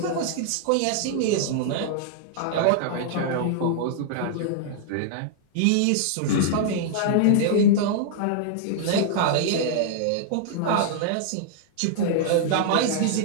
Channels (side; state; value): both; different; correlation -0.01